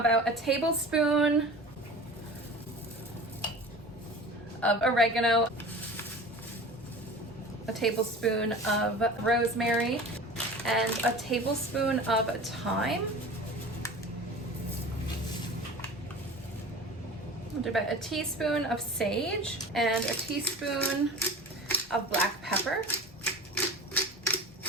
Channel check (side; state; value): both; normal; correlation 0.37